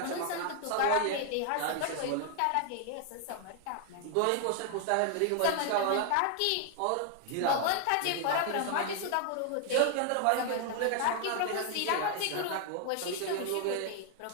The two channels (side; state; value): both; different; correlation 0.00